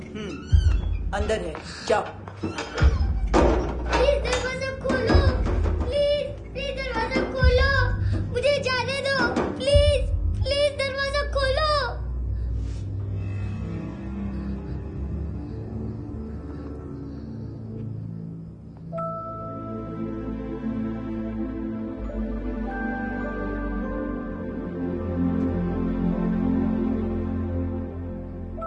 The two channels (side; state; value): both; identical; correlation 1.00